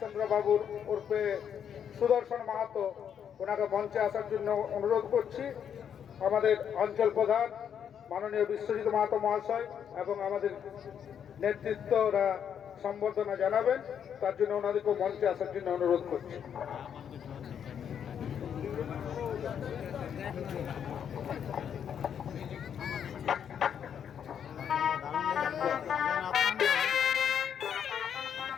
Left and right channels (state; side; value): quieter; right; 8.4 dB